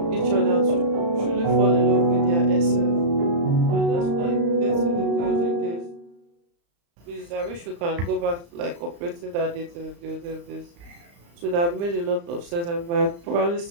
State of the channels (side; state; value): left; late; 35 ms